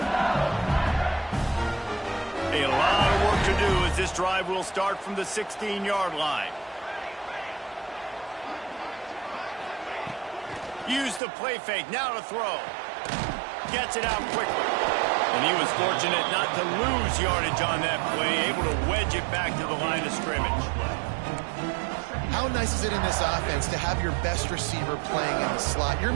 A lot of work to do as this drive will start from the 16-yard line. Use the play fake, now to throw. Gets it out quickly. And he was fortunate not to lose yardage on that play, able to wedge it back to the line of scrimmage. How nice is it in this offense to have your best receiver playing in the slot? You're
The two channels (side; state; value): left; drops out; at 11.2 s